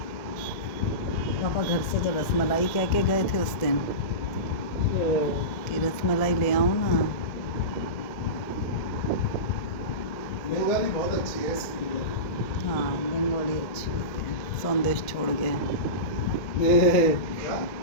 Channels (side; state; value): right; late; 2.1 ms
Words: पापा घर से तो रसमलाई कह के गए थे उस दिन कि रसमलाई ले आऊं ना। बंगाली बहुत अच्छी है इसकी लिए। हाँ बंगाली अच्छी होती है। संदेश छोड़ गए। क्या?